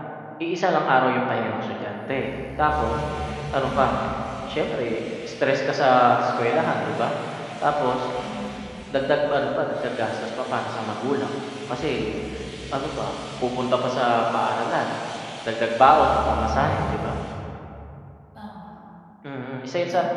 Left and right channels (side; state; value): both; identical; correlation 1.00